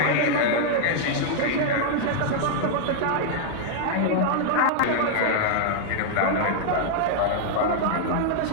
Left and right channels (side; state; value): both; different; correlation -0.01